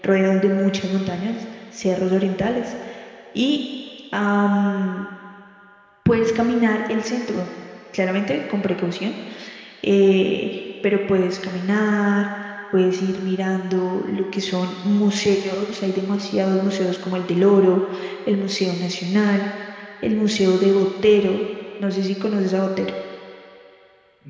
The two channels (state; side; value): identical; both; correlation 1.00